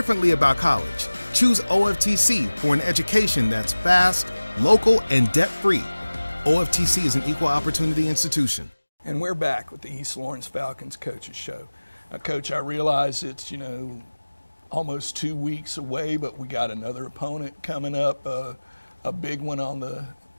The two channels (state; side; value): inverted; both; correlation -1.00